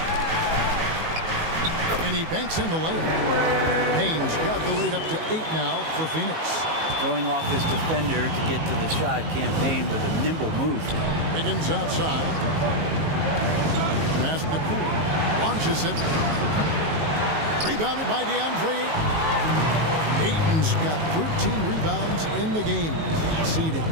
And he banks in the layup. Payne's got the lead up to 8 now for Phoenix. Throwing off his defender to get to the shot. Cam Payne with a nimble move. Wiggins outside. Pass to Poole. Launches it. Rebounded by DeAndre Ayton. Ayton's got 13 rebounds in the game. Seeded.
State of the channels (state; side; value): late; left; 19 ms